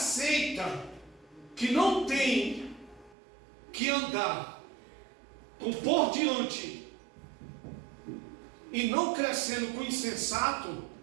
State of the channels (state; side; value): drops out; left; at 3.2 s